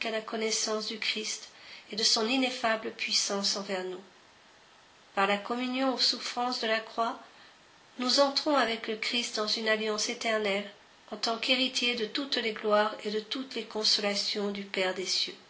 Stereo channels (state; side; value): identical; both; correlation 1.00